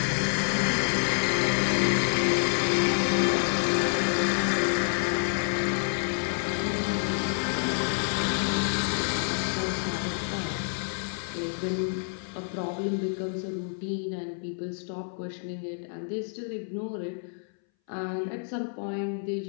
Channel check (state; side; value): silent; right; 59 dB below the other